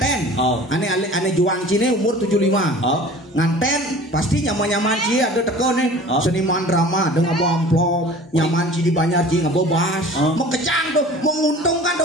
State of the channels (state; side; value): normal; both; correlation 0.43